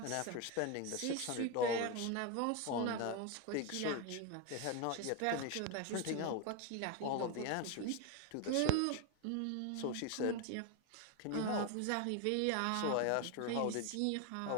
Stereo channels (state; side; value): different; both; correlation 0.02